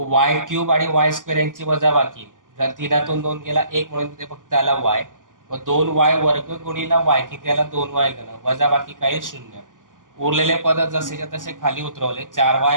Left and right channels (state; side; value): late; left; 0.88 ms